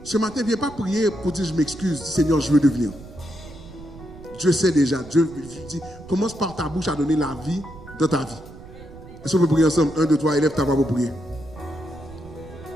ce matin, viens pas prier pour dire je m'excuse, Seigneur, je veux devenir. Dieu sait déjà. Dieu dit, commence par ta bouche à donner la vie dans ta vie. Est-ce qu'on peut prier ensemble? 1, 2, 3, élève ta voix pour prier.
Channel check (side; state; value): right; noise; rumble, 17 dB below the sound